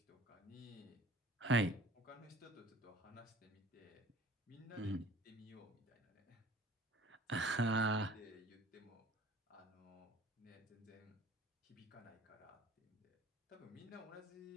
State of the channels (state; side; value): normal; both; correlation 0.48